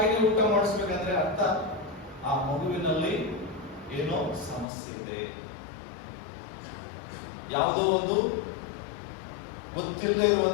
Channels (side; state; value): right; drops out; at 4.7 s